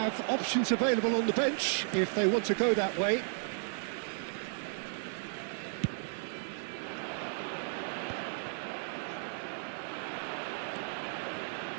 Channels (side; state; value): left; silent; digital silence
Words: options available on the bench if they want to go that way.